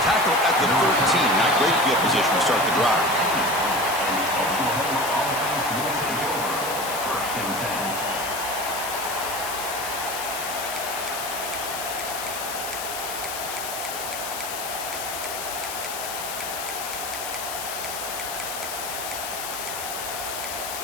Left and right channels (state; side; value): noise; left; hiss, 6 dB below the sound